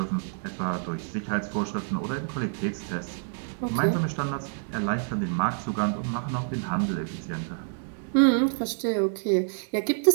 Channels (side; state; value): left; silent; digital silence